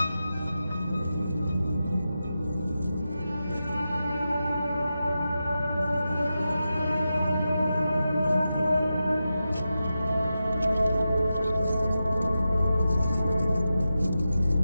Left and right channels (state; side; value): inverted; both; correlation -0.91